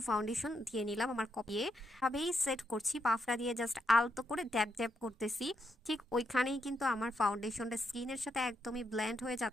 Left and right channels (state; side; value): normal; both; correlation 0.80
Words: ফাউন্ডেশন দিয়ে নিলাম আমার কপিয়ে ভাবেই সেট করছি। পাফটা দিয়ে জাস্ট আলতো করে ড্যাব ড্যাব করতেছি। ঠিক ওইখানেই কিন্তু আমার ফাউন্ডেশনটা স্কিনের সাথে একদমই ব্লেন্ড হয়ে